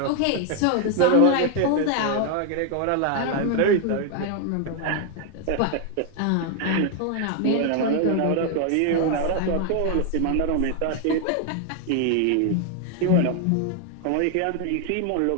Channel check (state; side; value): different; both; correlation 0.00